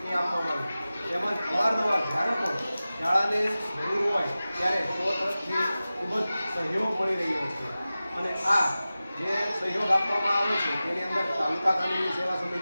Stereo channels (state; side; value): inverted; both; correlation -0.96